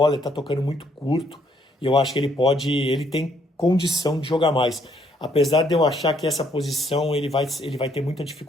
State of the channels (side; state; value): both; normal; correlation 0.68